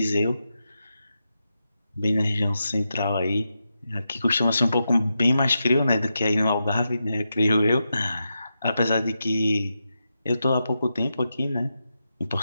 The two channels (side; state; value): both; inverted; correlation -0.88